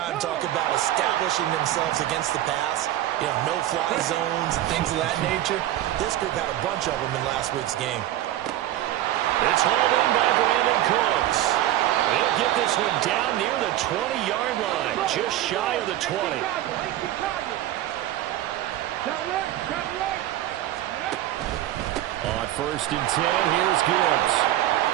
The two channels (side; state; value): left; quieter; 13.6 dB